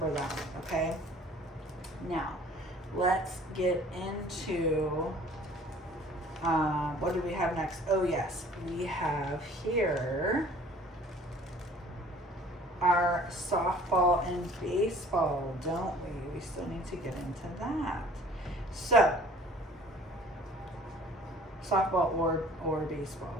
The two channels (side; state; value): both; normal; correlation 0.51